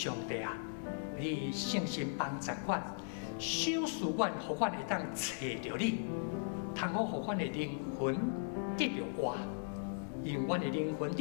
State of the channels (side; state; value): right; silent; digital silence